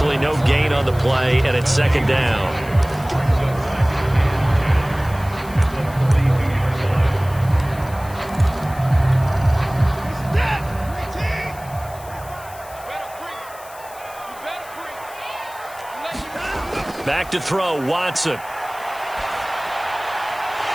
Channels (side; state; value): left; noise; hiss, 20 dB below the sound